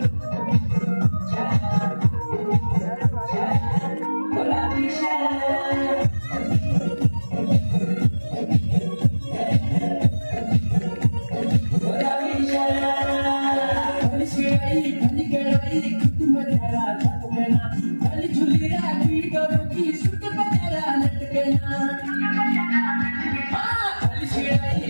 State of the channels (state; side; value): inverted; both; correlation -1.00